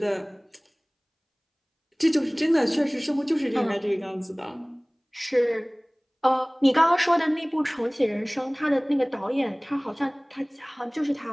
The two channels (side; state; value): both; identical; correlation 1.00